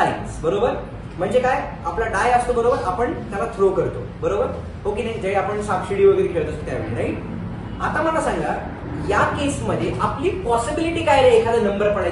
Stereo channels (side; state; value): both; identical; correlation 1.00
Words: बरोबर? म्हणजे काय, आपला डाय असतो, बरोबर, आपण त्याला थ्रो करतो. बरोबर हो की नाही? जे आपण सापशिडी वगैरे खेळत असतो त्यावेळी. राईट? आता मला सांगा, या केसमध्ये आपली पॉसिबिलिटी काय रे एखादा नंबर